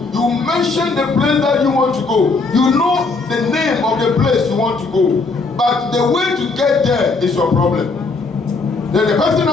You mention the place that you want to go. You know the name of the place you want to go. But the way to get there is your problem. Then the person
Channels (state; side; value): quieter; right; 3.9 dB